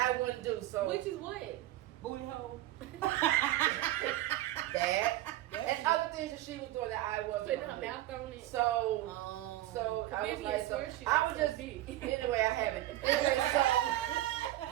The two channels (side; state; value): left; quieter; 15.1 dB